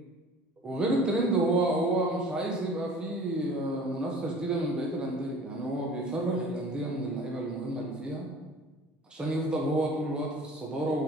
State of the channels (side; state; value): both; normal; correlation 0.45